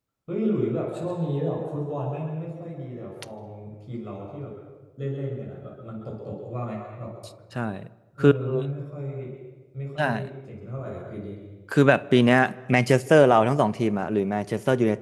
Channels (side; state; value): both; identical; correlation 1.00